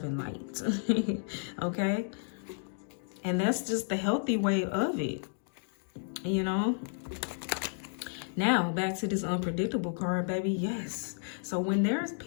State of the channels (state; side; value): silent; right; digital silence